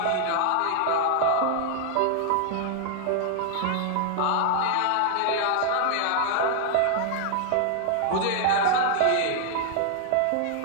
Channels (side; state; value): both; different; correlation -0.01